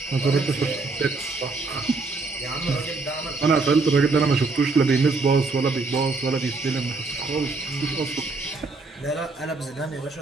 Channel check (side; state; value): left; quieter; 3.8 dB